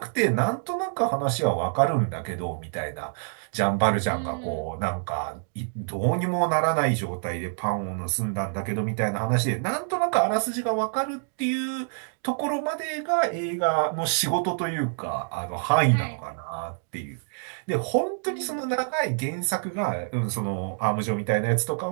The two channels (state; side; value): silent; left; digital silence